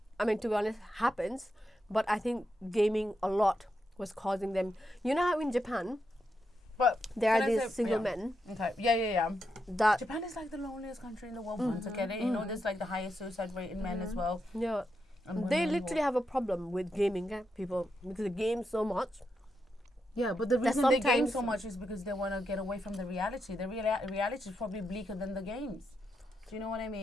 to be honest happens. But I think gaming a lot was causing them. You know how in Japan, but there are these single men. Okay. Yeah. That Japan is like the loneliest country in the world. Once again, there's like the highest suicide rate in men as well. Yeah, they literally have a problem with gaming, people, because they game so much. Yeah, but the reason they game so much is because they want to get away from the reality. The reality is probably bleaker than the games. Do you know what I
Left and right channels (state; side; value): normal; both; correlation 0.84